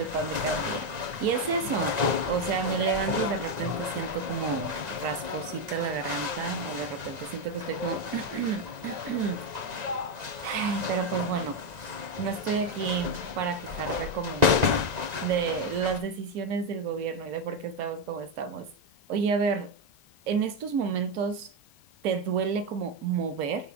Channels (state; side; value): late; left; 1.9 ms